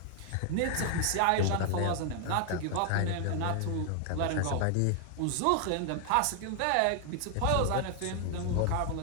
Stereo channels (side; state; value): both; different; correlation 0.00